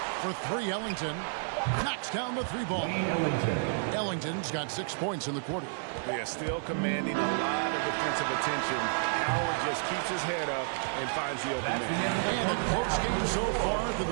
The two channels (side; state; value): left; silent; digital silence